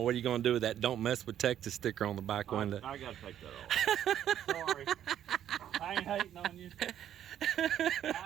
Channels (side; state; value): left; quieter; 10.6 dB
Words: what are you going to do with that "Don't mess with Texas" sticker on the back window? I got to take that off. Sorry. I ain't hating on you.